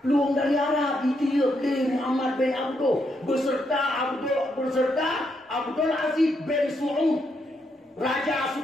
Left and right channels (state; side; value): normal; both; correlation 0.79